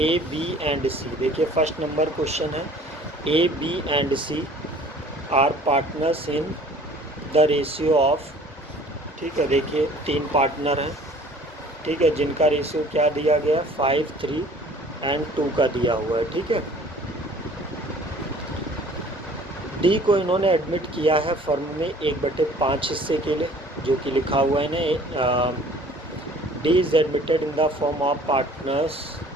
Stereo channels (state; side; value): normal; both; correlation 0.51